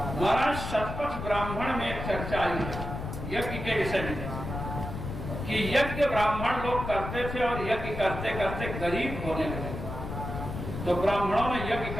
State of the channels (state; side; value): noise; left; rumble, 6 dB below the sound